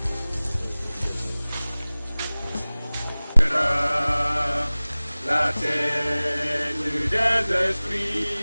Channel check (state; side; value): inverted; both; correlation -0.99